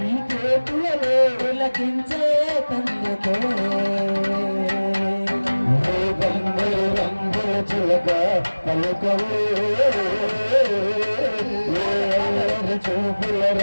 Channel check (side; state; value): both; inverted; correlation -1.00